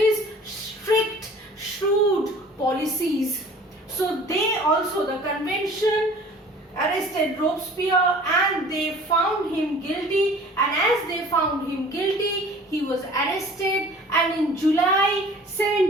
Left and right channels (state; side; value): normal; both; correlation 0.47